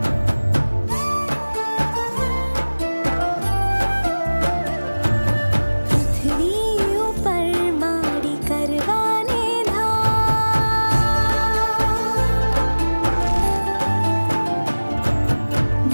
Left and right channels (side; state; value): both; inverted; correlation -1.00